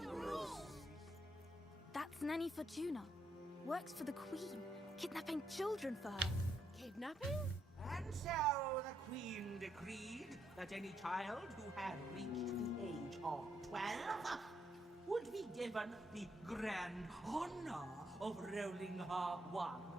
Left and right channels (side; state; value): both; normal; correlation 0.77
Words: That's Nanny Fortuna. Works for the Queen, kidnapping children for her. Kidnapping? And so the Queen decreed that any child who had reached the age of 12 would be given the grand honor of rolling her one